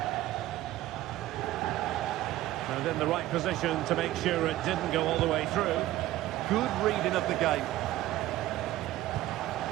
And in the right position to make sure it didn't go all the way through. Good reading of the game.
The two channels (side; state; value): left; quieter; 15.3 dB